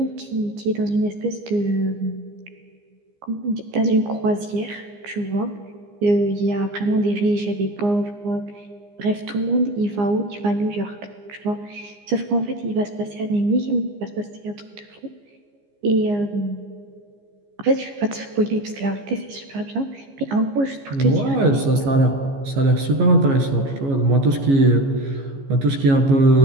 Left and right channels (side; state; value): left; late; 15 ms